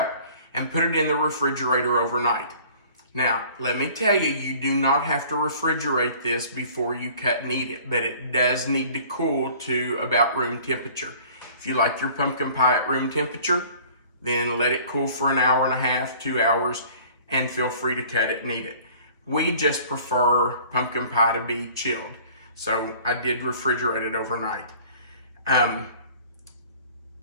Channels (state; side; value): inverted; both; correlation -0.50